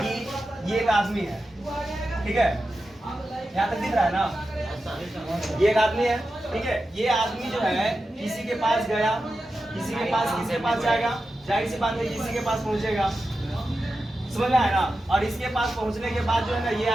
ये एक आदमी है, ठीक है, यहाँ तक दिख रहा है ना, ये एक आदमी है, ठीक है। ये आदमी जो है किसी के पास गया, किसी के पास जाएगा, जाहिर सी बात है किसी के पास पहुंचेगा, समझ में आया ना। और इसके पास पहुंचने के बाद जो है ना, ये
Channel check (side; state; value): both; normal; correlation 0.91